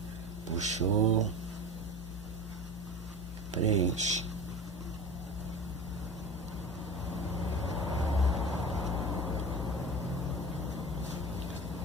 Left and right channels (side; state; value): both; normal; correlation 0.33